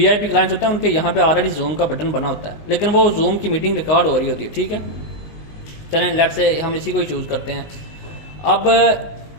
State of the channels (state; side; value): late; right; 19 ms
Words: क्लाइंट्स होते हैं, उनके यहाँ पे ऑलरेडी जूम का बटन बना होता है, लेकिन वो जूम की मीटिंग रिकॉर्ड हो रही होती है, ठीक है। चलें लेट से हम इसी को ही चूज़ करते हैं। अब